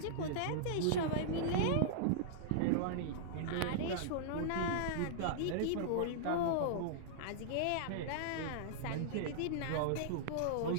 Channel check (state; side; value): different; both; correlation -0.02